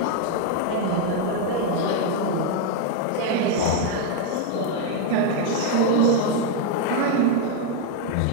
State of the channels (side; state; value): both; different; correlation 0.01